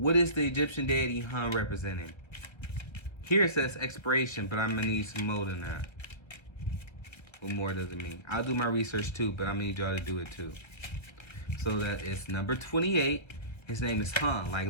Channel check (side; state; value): right; late; 1.3 ms